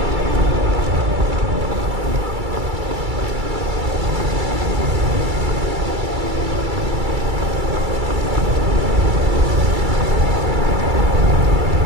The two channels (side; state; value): left; late; 2.3 ms